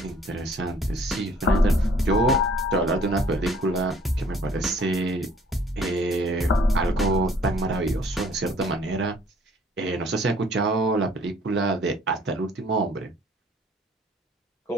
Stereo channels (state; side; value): normal; both; correlation 0.57